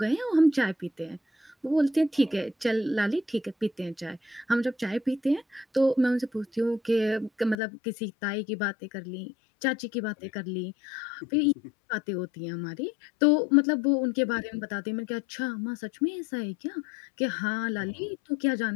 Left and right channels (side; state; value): right; drops out; at 7.6 s